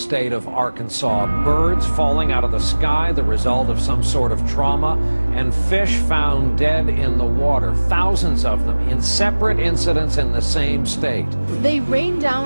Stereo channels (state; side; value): inverted; both; correlation -1.00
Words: of Arkansas. Birds falling out of the sky, the result of some sort of trauma, and fish found dead in the water. Thousands of them in separate incidents in the same state. They rained